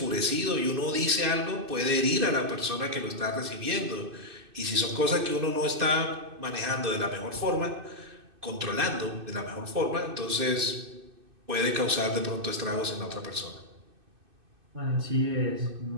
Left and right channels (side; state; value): left; late; 2.6 ms